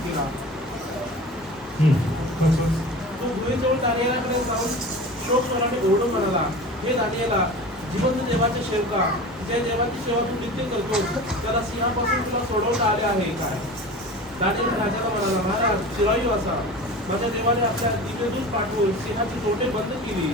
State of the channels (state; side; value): normal; both; correlation 0.35